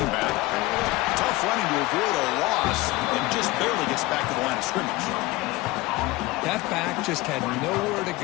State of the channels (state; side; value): quieter; right; 20.0 dB